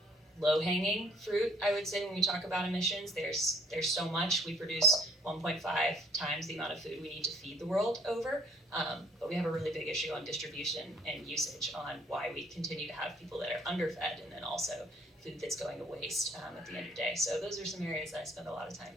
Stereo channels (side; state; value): both; normal; correlation 0.61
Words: low-hanging fruit, I would say, when we talk about emissions. There's so much. We produce 1.5 times the amount of food we need to feed the world over, but we have a really big issue on distribution and usage, on why we continue to have people that are underfed, and then also food that's going to waste at the end of the day. So those are some areas that I spend a lot of